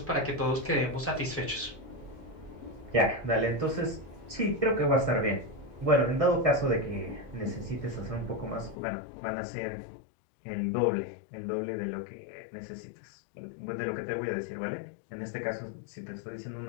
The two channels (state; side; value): drops out; right; at 8.8 s